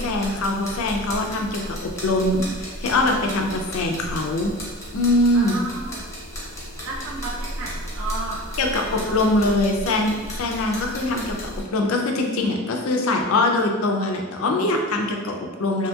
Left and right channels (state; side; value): normal; both; correlation 0.33